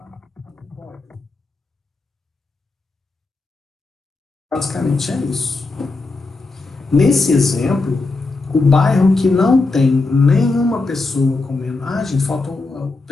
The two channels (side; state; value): right; quieter; 3.5 dB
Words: Basicamente é isso. Nesse exemplo, o bairro que não tem nenhuma pessoa com menos... Ah, gente, faltam